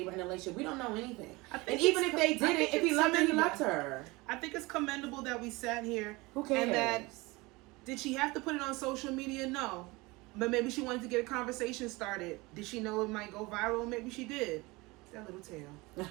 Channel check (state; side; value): quieter; left; 23.3 dB